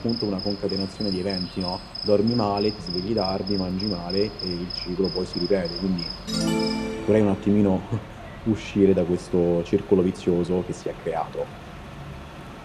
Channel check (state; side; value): identical; both; correlation 1.00